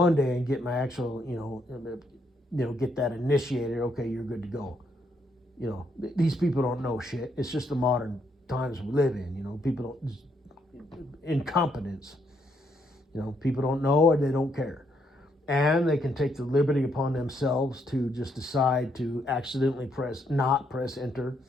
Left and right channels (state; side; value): normal; both; correlation 0.74